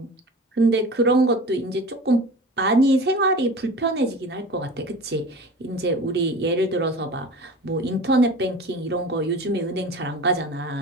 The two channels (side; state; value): both; normal; correlation 0.36